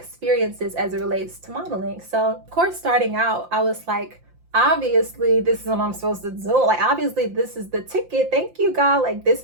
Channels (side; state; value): left; late; 5.8 ms